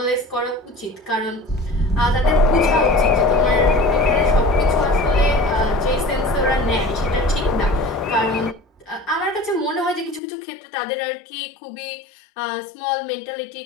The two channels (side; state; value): right; drops out; at 10.2 s